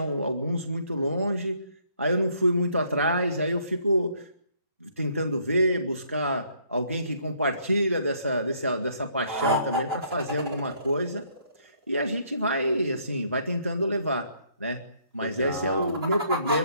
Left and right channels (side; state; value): both; inverted; correlation -0.67